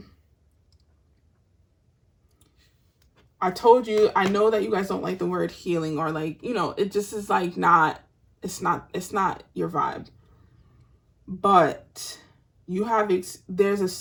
I told you, I know that you guys don't like the word healing, or like, you know, it just is like it's not your vibe. But you have, there's a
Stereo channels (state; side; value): identical; both; correlation 1.00